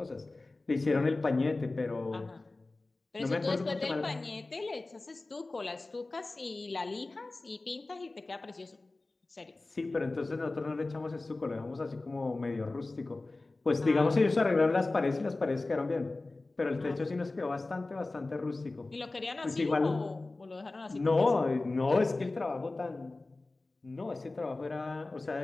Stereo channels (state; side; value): quieter; right; 3.2 dB